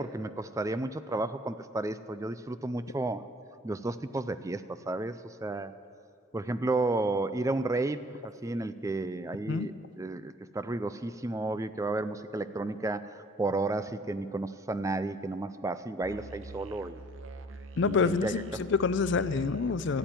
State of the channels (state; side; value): normal; both; correlation 0.54